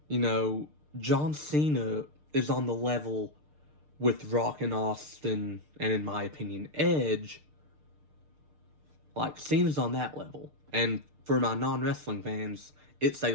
You know, John Cena is on the level with Rock and Austin, and in my opinion, Edge. Like, Cena's on that level. And for my non-wrestling fans, it's a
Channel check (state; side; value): late; left; 6.6 ms